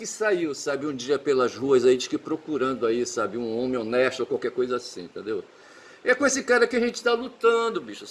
saiu, sabe, um dia pelas ruas aí, diz que procurando aí, sabe, um homem honesto ou qualquer coisa assim, entendeu? É com esse cara que a gente está lutando, bicho,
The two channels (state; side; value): identical; both; correlation 1.00